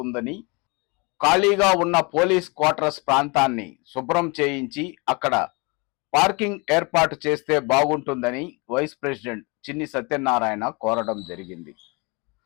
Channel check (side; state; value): right; quieter; 28.8 dB